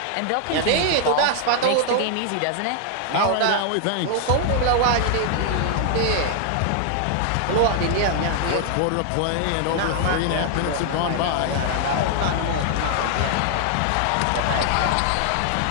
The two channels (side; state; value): both; different; correlation 0.00